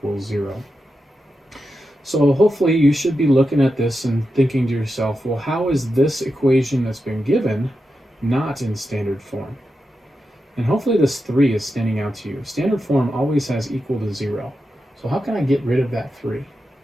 0. So hopefully you should be looking at this and thinking to yourself, well, how is this equation that's been given not in standard form? And hopefully this 3 is standing out to you. Standard form always has equal to 0. So how can I get rid of that 3?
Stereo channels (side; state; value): both; normal; correlation 0.89